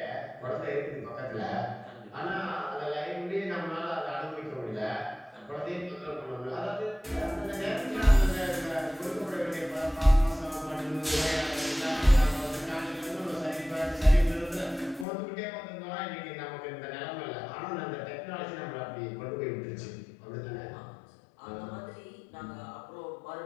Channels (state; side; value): drops out; right; at 15.1 s